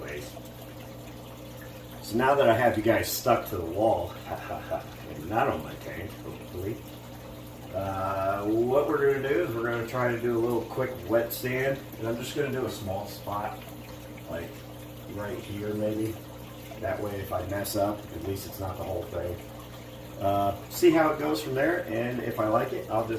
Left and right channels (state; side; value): identical; both; correlation 1.00